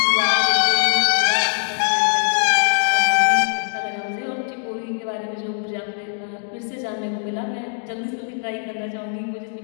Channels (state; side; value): silent; right; digital silence